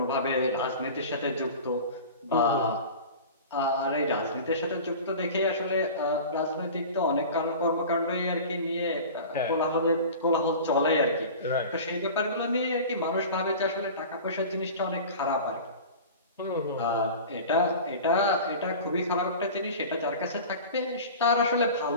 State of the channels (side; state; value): both; inverted; correlation -0.36